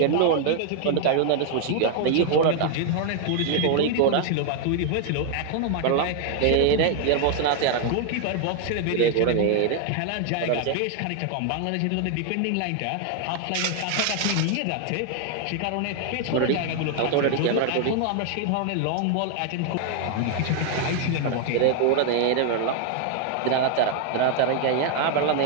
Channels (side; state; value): both; different; correlation 0.00